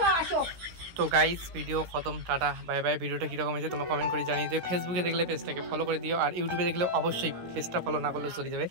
আসো তো গাইস ভিডিও খতম, টাটা বাই বাই। ভিডিওটা কীরকম হয়েছে তোমরা কমেন্ট করে জানিয়ে দিও। ফেসবুকে দেখলে পেজটাকে ফলো করে দিও, আর ইউটিউবে দেখলে অবশ্যই পেজটা ফলো না করলেও চলে যাবে,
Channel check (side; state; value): left; late; 16 ms